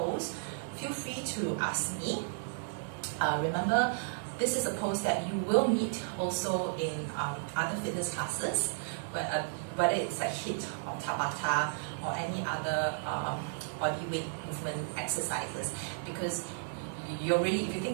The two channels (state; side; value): silent; left; digital silence